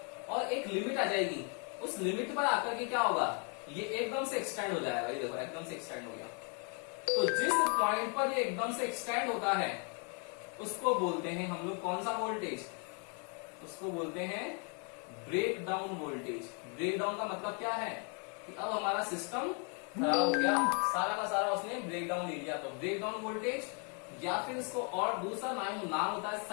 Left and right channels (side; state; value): right; quieter; 38.3 dB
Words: और एक लिमिट आ जाएगी, उस लिमिट पर आकर के क्या होगा, ये एकदम से एक्सटेंड हो जाएगा। ये देखो एकदम से एक्सटेंड हो गया। तो जिस पॉइंट पर ये एकदम से एक्सटेंड होता है उसको बोलते हैं हम लोग कौन सा वोल्टेज, उसको बोलते हैं break down voltage. Break down का मतलब क्या है कि अब हमारा सिस्टम खराब हो गया, सारा का सारा उसने ब्रेक डाउन ले लिया, तो ब्रेक डाउन वोल्टेज, या फिर इसको और दूसरा नाम होता है